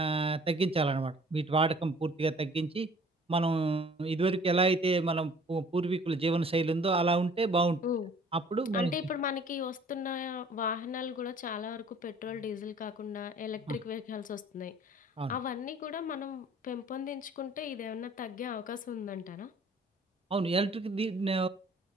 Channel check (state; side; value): normal; both; correlation 0.52